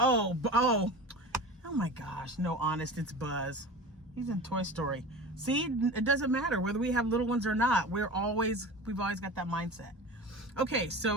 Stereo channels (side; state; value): both; normal; correlation 0.33